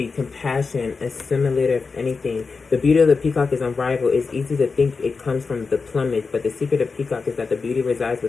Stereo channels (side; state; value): right; quieter; 4.6 dB